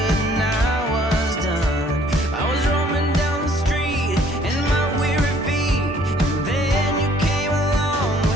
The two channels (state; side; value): normal; both; correlation 0.60